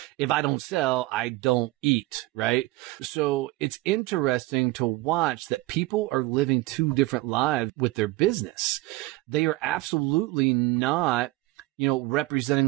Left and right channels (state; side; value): quieter; left; 19.9 dB